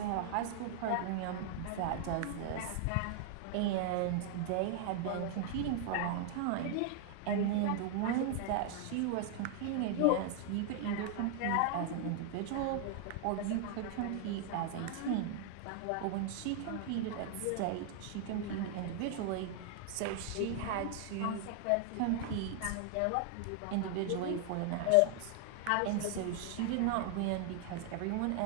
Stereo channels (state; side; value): different; both; correlation 0.00